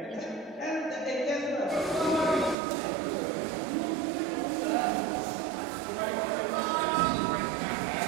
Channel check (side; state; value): left; drops out; at 2.6 s